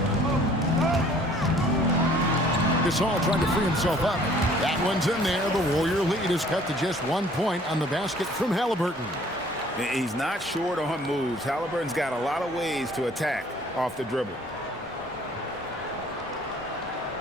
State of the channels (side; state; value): both; normal; correlation 0.56